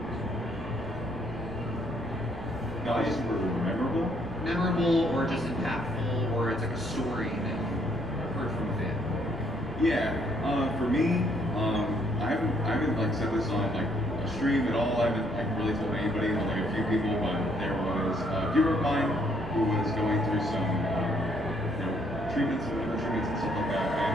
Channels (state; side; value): noise; right; rumble, 17 dB below the sound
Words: Not super memorable. Memorable or just impactful, or it's like a story that you heard from a fan? Yeah, for me, I haven't like said this on like a stream at all. I haven't really told anybody, but like a few people. But there was a viewer of mine who was going through some treatments and stuff like that,